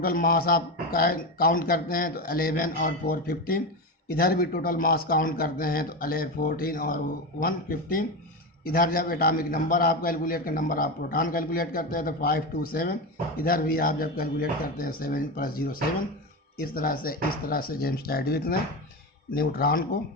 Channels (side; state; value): both; normal; correlation 0.18